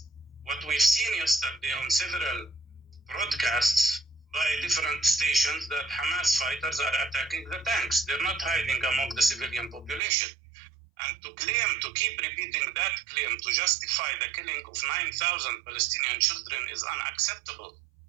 What we've seen yesterday on several broadcasts by different stations, that Hamas fighters are attacking the tanks. They're not hiding among the civilian population. And to keep repeating that claim to justify the killing of 9,000 Palestinian children is unacceptable.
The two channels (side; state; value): left; drops out; at 10.0 s